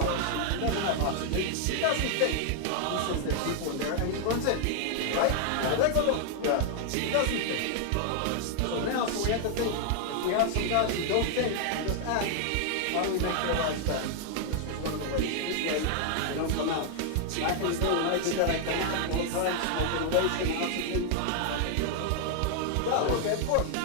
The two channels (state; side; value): different; both; correlation 0.00